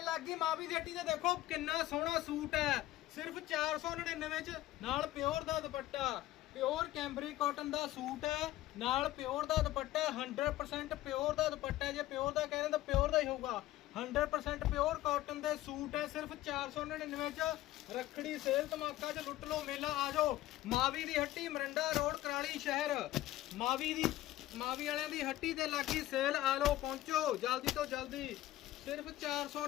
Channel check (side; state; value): right; quieter; 15.4 dB